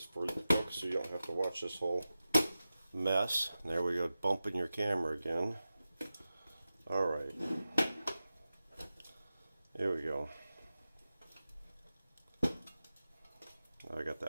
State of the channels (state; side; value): inverted; both; correlation -0.94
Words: for you folks so you don't have to watch this whole mess. There we go, bumping your camera again. Alright. Here we go. I got